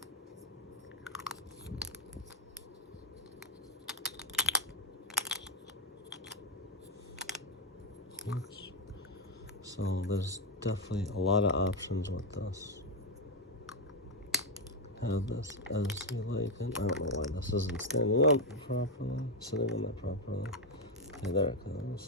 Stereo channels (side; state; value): both; normal; correlation 0.05